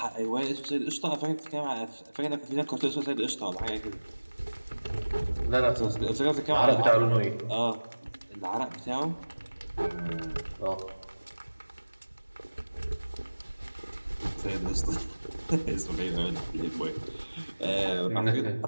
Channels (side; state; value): both; inverted; correlation -1.00